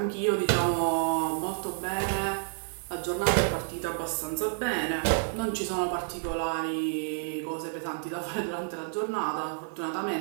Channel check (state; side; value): silent; left; 58 dB below the other